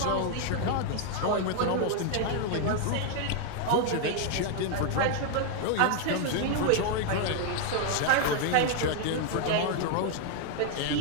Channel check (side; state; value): both; different; correlation 0.00